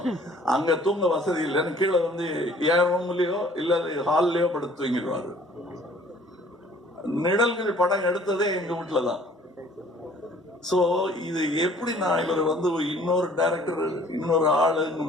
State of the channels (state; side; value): normal; both; correlation 0.55